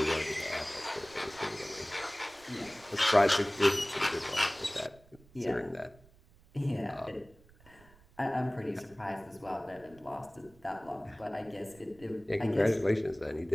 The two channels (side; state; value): right; noise; rumble, 26 dB below the sound